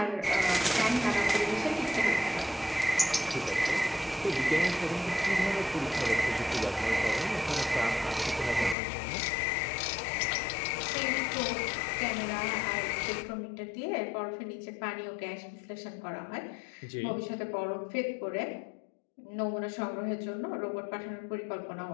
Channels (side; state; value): right; drops out; at 8.8 s